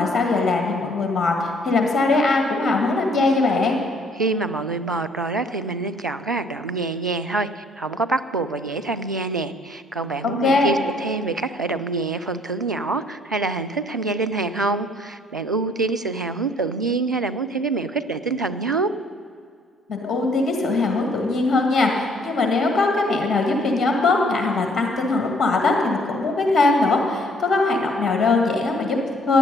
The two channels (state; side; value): normal; both; correlation 0.61